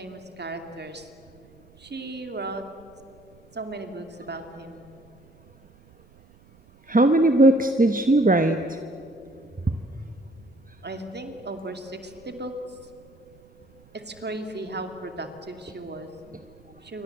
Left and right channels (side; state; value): right; noise; rumble, 27 dB below the sound